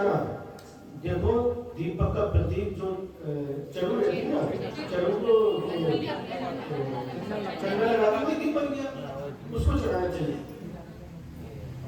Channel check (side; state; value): both; identical; correlation 1.00